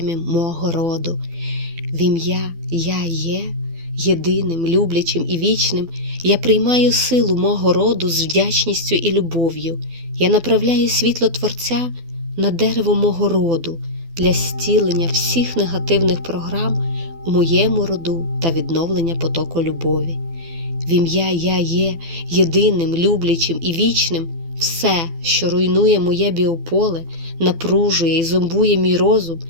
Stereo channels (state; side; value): late; left; 12 ms